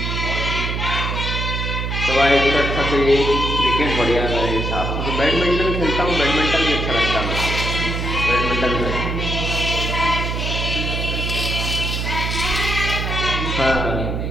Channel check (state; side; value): noise; right; hum, 2 dB below the sound